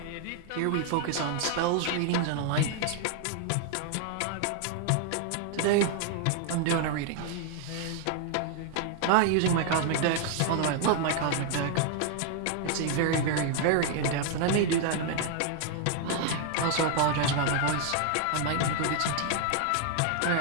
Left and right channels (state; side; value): different; both; correlation 0.00